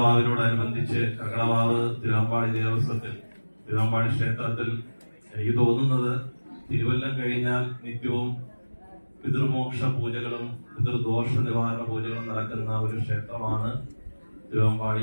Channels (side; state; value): both; inverted; correlation -1.00